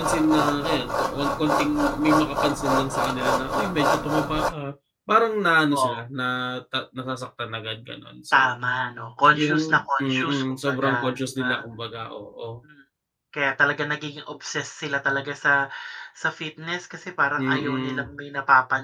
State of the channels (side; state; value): both; identical; correlation 1.00